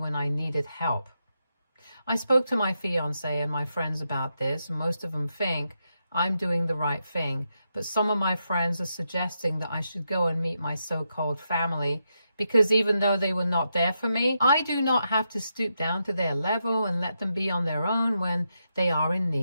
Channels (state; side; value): inverted; both; correlation -0.84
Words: I needed help? I spoke to my fiancé and my friends about this, and most of them think I'm doing the right thing, but some of my friends are suggesting that I should go and meet my so-called family, because even though they were not there for me, I do not have to stoop down to their level and let them be on their own when they are in